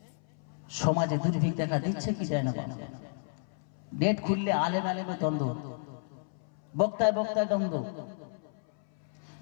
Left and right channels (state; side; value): silent; right; 57 dB below the other